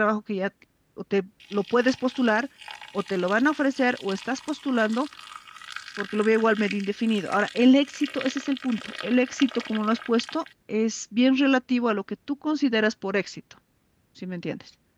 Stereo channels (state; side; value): identical; both; correlation 1.00